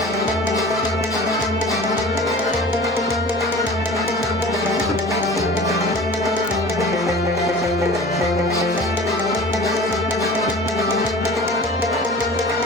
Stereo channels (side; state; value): both; normal; correlation 0.41